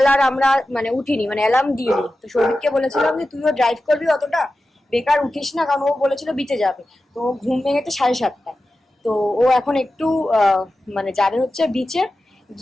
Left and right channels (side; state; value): both; normal; correlation 0.93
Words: আর আমরা উঠিনি, অ্যালার্ম দিইনি। তো সৌভিককে বলেছিলাম যে তুইও ড্রাইভ করবি, অতটা বেকার উঠিস না, কারণ ও বলেছিল বিচে যাবে। তো ঘুম ভেঙেছে 7:30টায়। তো ও এখন একটু যাবে হচ্ছে বিচে